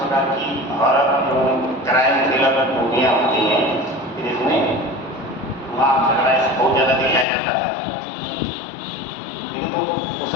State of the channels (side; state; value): right; drops out; at 7.2 s